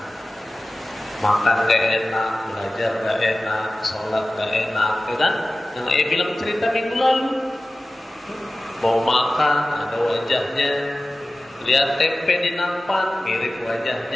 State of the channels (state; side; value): normal; both; correlation 0.96